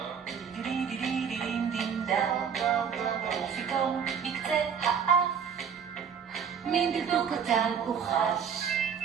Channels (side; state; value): left; quieter; 7.1 dB